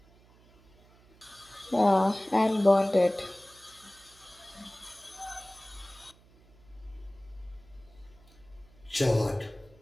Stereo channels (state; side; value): noise; right; hum, 27 dB below the sound